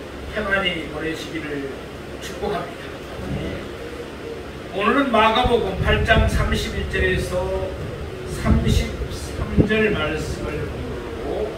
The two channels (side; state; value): both; identical; correlation 1.00